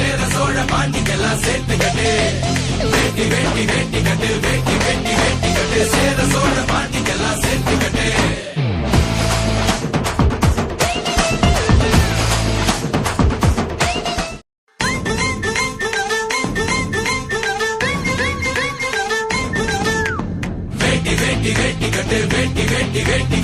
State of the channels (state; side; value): identical; both; correlation 1.00